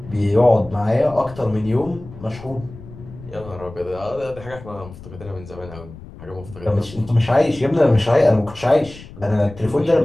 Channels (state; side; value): noise; left; rumble, 17 dB below the sound